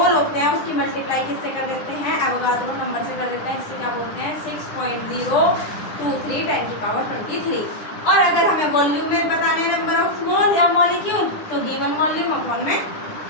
होते हैं उसकी मल्टीप्लाई किससे कर देते हैं? एवोगाड्रो नंबर से कर देते हैं। इससे क्या बोलते हैं? 6.023 10 की पावर 23। और अगर हमें वॉल्यूम में बताने नंबर ऑफ मोल या मॉलिक्यूल, तो गिवन वॉल्यूम अपॉन में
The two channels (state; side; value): late; right; 10 ms